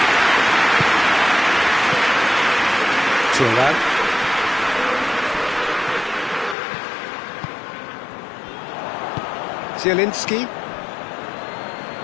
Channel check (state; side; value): drops out; right; at 6.6 s